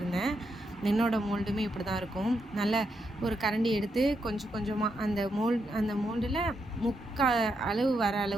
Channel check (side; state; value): both; normal; correlation 0.81